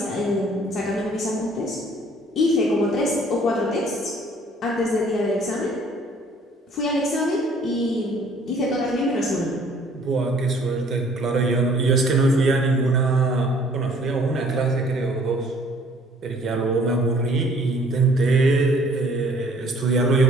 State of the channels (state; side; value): normal; both; correlation 0.57